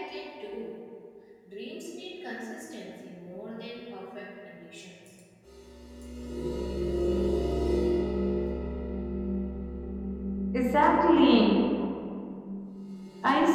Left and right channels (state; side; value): identical; both; correlation 1.00